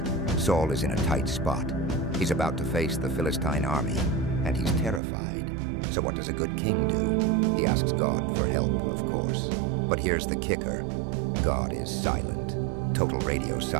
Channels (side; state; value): left; drops out; at 5.0 s